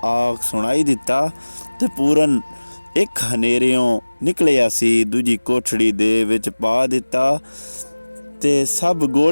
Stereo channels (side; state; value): both; inverted; correlation -1.00